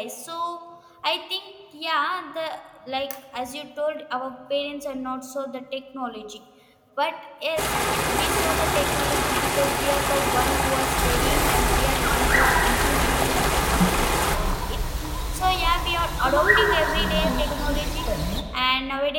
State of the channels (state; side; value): identical; both; correlation 1.00